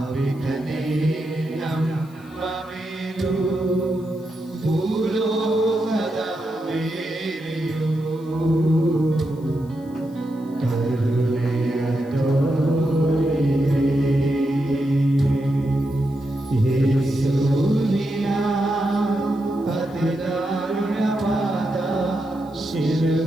ನಮ್ಮ ಮೇಲೂ ಭೂಲೋಕದ ಮೇಲೆಯೂ ಕರುಣೆಯ ತೋರಿದೆ. ಯೇಸುವಿನ ಅತಿ ದಾರುಣವಾದ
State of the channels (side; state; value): left; noise; hiss, 29 dB below the sound